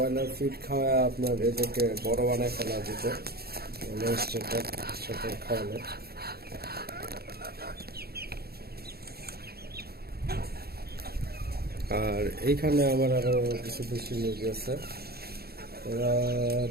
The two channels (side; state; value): left; late; 0.46 ms